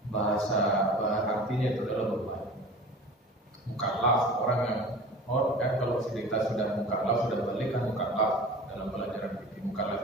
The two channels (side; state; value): both; normal; correlation 0.39